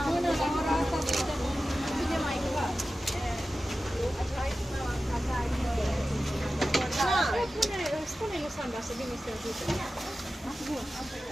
Spune-i lui Sandra să vină să ajute.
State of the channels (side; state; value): both; normal; correlation 0.94